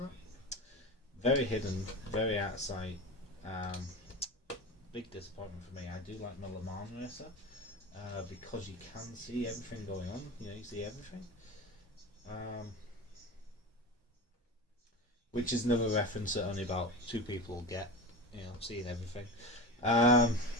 Very hidden, very out of sight. Big disappointment for me. I do like my Le Mans racer because you can see everything going on. You see everything. Which is another reference that only about 2 people get. Seeing everything.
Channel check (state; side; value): normal; both; correlation 0.28